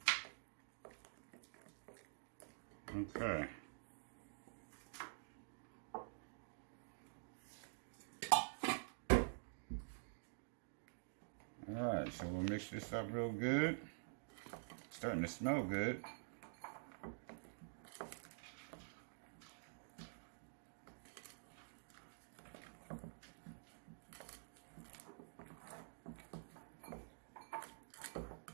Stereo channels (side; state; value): left; silent; digital silence